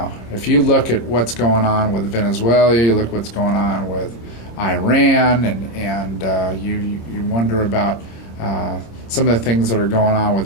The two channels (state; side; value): late; right; 26 ms